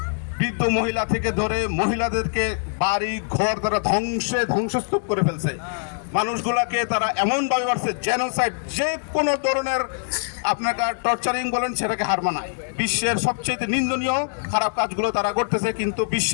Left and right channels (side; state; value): right; silent; digital silence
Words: বৃদ্ধ মহিলা থেকে ধরে মহিলাদেরকে বাড়ি ঘর তারা ধ্বংসস্তূপ করে ফেলছে। মানুষগুলাকে তারা এমনভাবে মারছে, জেনোসাইড, যে কোনো ধরনের আপনাকে টর্চারিং বলেন সেটাকে হার মানায়। বিশ্বের সবচেয়ে নিন্দনীয় খারাপ কাজগুলো তারা করতেছে, কিন্তু